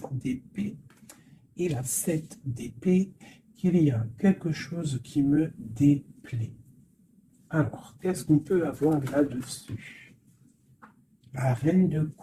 d'épée et la 7 d'épée, qu'il y a quelque chose qui me déplaît. Alors, qu'est-ce qu'on peut avoir là-dessus? La reine de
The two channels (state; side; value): identical; both; correlation 1.00